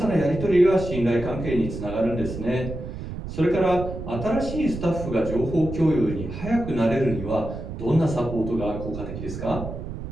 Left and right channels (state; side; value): noise; right; rumble, 8 dB below the sound